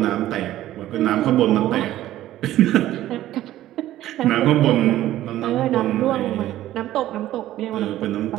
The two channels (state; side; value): quieter; left; 14.0 dB